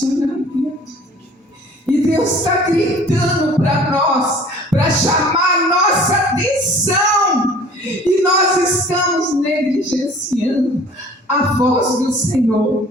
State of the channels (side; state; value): both; normal; correlation 0.48